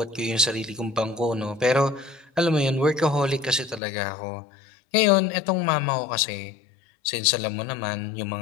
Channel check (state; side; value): drops out; right; at 3.8 s